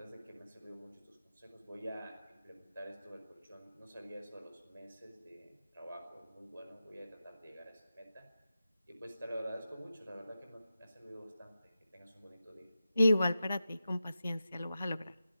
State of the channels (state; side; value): inverted; both; correlation -0.91